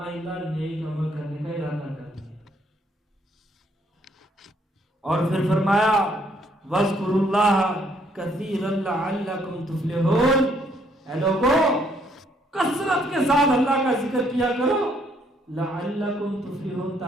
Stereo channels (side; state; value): both; normal; correlation 0.68